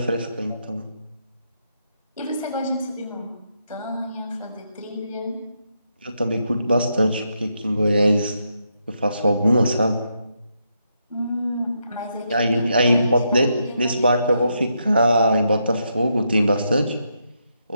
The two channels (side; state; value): both; inverted; correlation -0.80